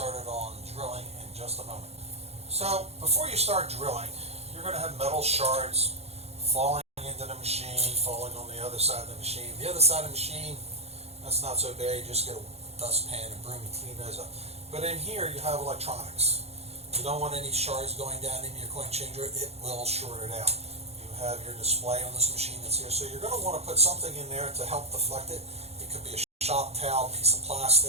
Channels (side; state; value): left; late; 0.30 ms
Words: on drilling in just a moment. So before you start drilling, you're going to have metal shards falling into the machine, falling on the other side of the machine. The other side of the machine, that's not so bad. You just get a dustpan and broom and clean those up. But in here you have electronics. You don't want any shards going down into your coin changer. It will short it out. You have your display on this machine that's here, so you're going to want to put something in there to help deflect it. It could be a shop towel, piece of